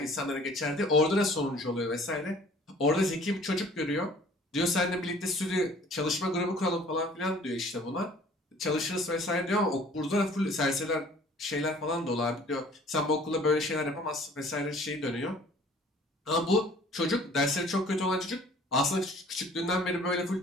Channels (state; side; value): normal; both; correlation 0.52